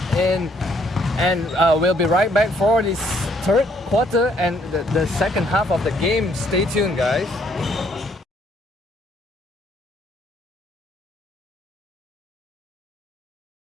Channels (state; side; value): normal; both; correlation 0.67